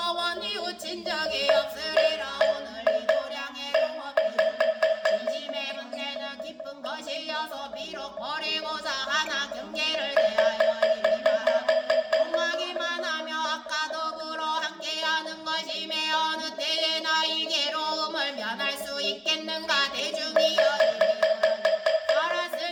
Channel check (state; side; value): identical; both; correlation 1.00